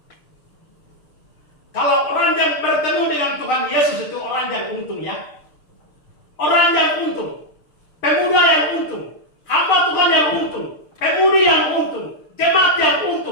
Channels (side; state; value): right; late; 6.7 ms